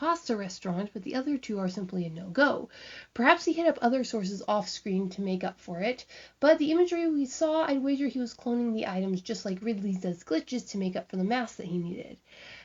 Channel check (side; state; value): both; identical; correlation 1.00